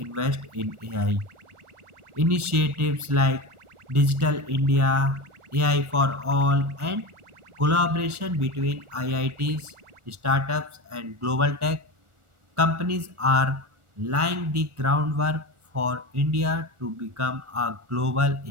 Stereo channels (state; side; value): late; left; 1.4 ms